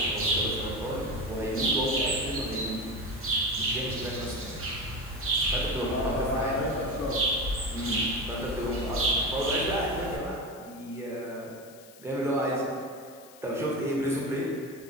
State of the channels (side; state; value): left; noise; hiss, 22 dB below the sound